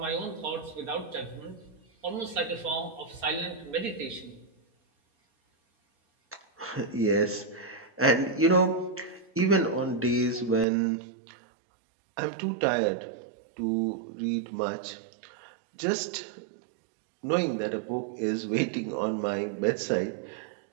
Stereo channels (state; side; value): drops out; left; at 10.7 s